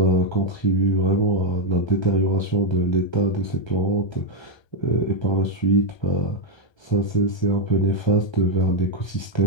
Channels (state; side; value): late; right; 1.3 ms